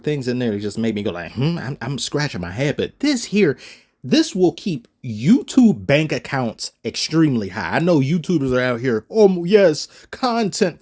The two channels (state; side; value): identical; both; correlation 1.00